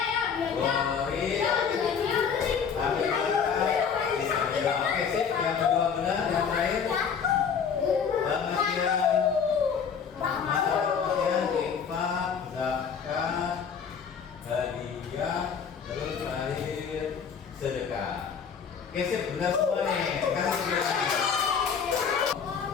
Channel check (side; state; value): right; quieter; 6.7 dB